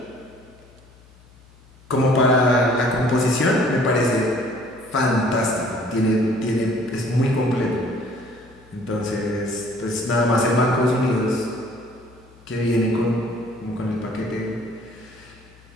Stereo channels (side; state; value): left; noise; hum, 26 dB below the sound